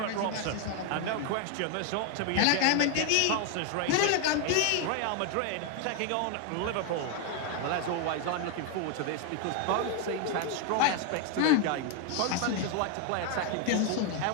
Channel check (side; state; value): both; different; correlation 0.01